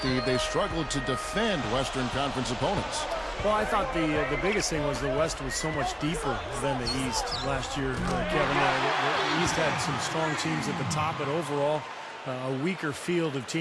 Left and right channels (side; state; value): both; identical; correlation 1.00